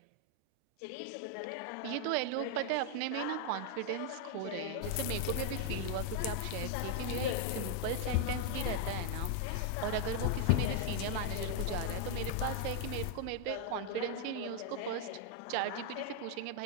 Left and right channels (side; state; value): both; different; correlation 0.00